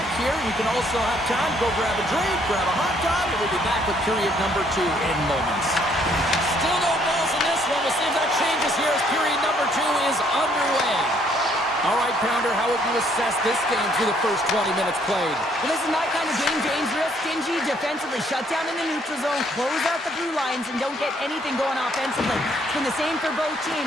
here. You can also have time to go grab a drink, grab a hot dog, and we'll be back with period number 2 in moments. Still no balls in this one. We'll see if that changes here as period number 2 is underway. All right, Pounder, how would you assess this game through the first 20 minutes played? Well, this is my kind of game, James. Real stingy defensively. Shut down in the neutral zone, close out the blue lines, and don't get anything going offensively. It's been the same for both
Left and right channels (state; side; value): normal; both; correlation 0.66